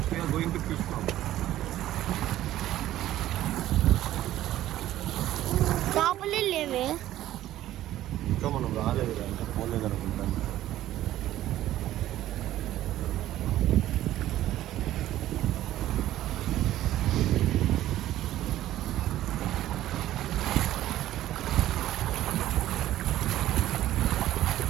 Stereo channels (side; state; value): left; quieter; 13.8 dB